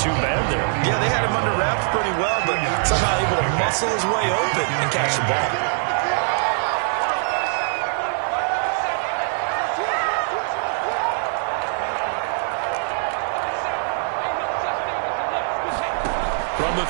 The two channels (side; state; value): left; silent; digital silence